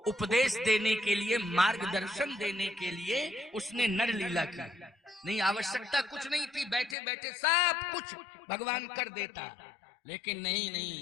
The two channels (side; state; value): right; drops out; at 7.0 s